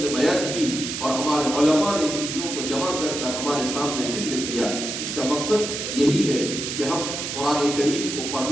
نے بیان کی اور ہمارے علماء نے ان چیزوں کو جمع کر کر ہمارے سامنے ذکر کیا. اس کا مقصد یہی ہے کہ ہم قرآن کریم کو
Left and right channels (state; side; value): noise; right; hiss, 5 dB below the sound